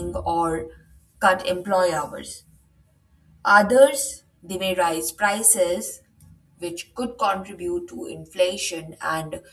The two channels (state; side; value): identical; both; correlation 1.00